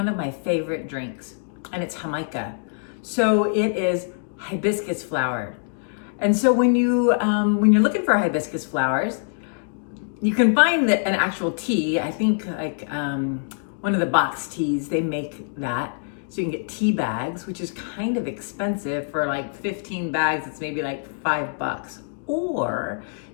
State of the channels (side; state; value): right; silent; digital silence